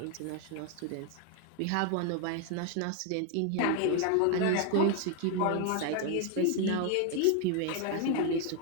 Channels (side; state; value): both; different; correlation 0.01